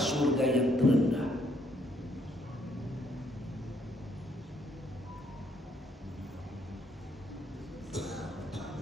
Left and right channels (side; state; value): both; normal; correlation 0.70